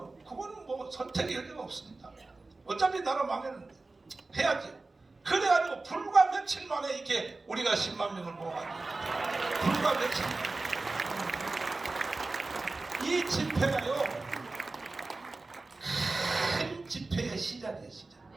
그거는 뭐 선택의 여지가 없습니다. 어차피 나라 망했는데 해야지. 그래가지고 불과 며칠 만에 이렇게 우리가 10만 명을 모아가지고 불과 며칠 만에 이 집회가요 큰 집회의 시작이에요. 시작.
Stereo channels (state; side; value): quieter; left; 3.4 dB